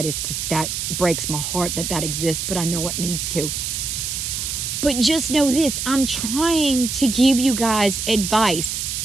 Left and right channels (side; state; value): right; noise; hiss, 3 dB below the sound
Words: is because that breaks my heart that exists, but I know it needs to. But just know this, I'm trying to give you guys advice